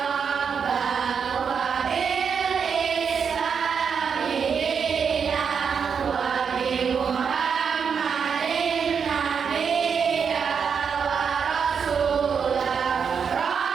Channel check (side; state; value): left; quieter; 6.5 dB